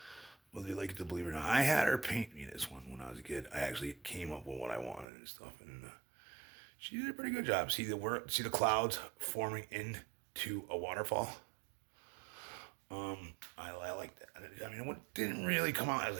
you like it to believe it or not. I had her paint me this one when I was a kid. I actually came up with what I wanted and stuff, and she did a pretty good job. See the clouds forming into a waterfall. I like that. I mean, it didn't really come out as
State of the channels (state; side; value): drops out; left; at 5.1 s